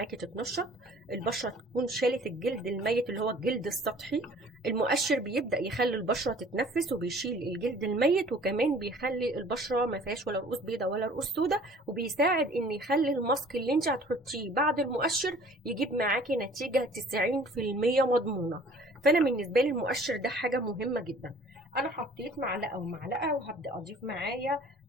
تتنشط، البشره تكون شالت الجلد الميت اللي هو الجلد السطحي. المؤشر بيبدا يخلي البشره تتنفس وبيشيل الجلد الميت، وكمان بيخلي البشره ما فيهاش ولا رؤوس بيضاء ولا رؤوس سوداء، وبيساعد ان يخلي الماسك اللي انت هتحطيه بعد المؤشر يجيب معاكي نتيجه 90% مضمونه. فانا بالنسبه لي المؤشر ده حاجه مهمه جدا. انا حطيت معلقه ومعلقه، وهبدا اضيف معايا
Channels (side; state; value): both; normal; correlation 0.51